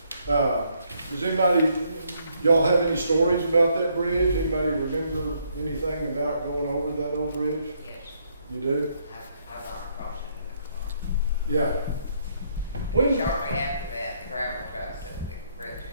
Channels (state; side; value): inverted; both; correlation -0.72